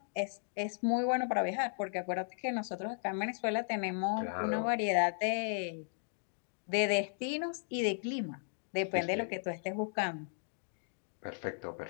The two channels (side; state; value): right; silent; digital silence